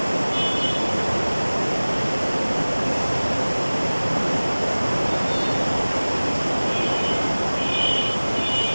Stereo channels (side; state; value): both; inverted; correlation -1.00